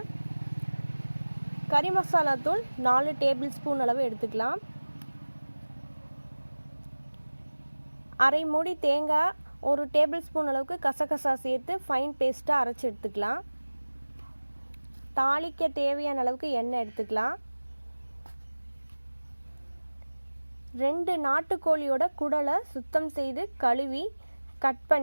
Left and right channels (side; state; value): both; inverted; correlation -1.00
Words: கறி மசாலா தூள் 4 டேபிள் ஸ்பூன் அளவு எடுத்துக்கலாம். அரை மூடி தேங்காய், 1 டேபிள் ஸ்பூன் அளவுக்கு கசகசா சேர்த்து ஃபைன் பேஸ்ட்டாக அரைச்சி எடுத்துக்கலாம். தாளிக்க தேவையான அளவுக்கு எண்ணெய் எடுத்துக்கலாம். 2 நாட்டுக்கோழியோட குடலை சுத்தம் செய்து கழுவி கட்